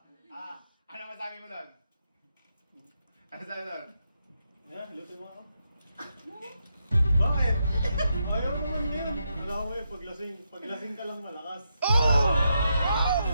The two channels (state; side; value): inverted; both; correlation -0.82